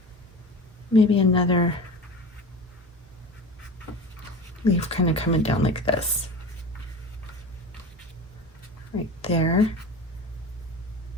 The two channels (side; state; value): both; normal; correlation 0.32